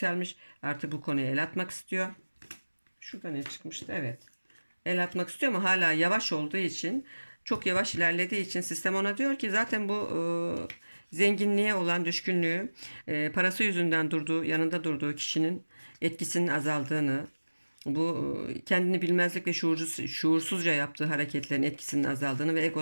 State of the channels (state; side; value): inverted; both; correlation -1.00